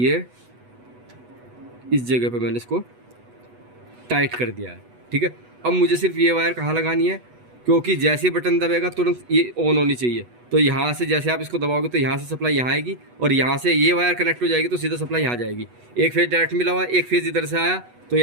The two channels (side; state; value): left; late; 8.1 ms